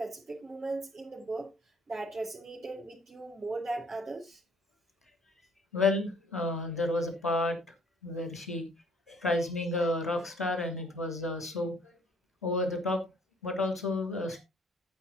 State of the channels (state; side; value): normal; both; correlation 0.59